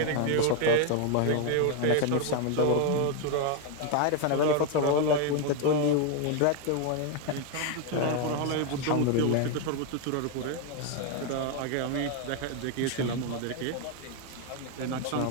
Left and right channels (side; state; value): both; different; correlation 0.01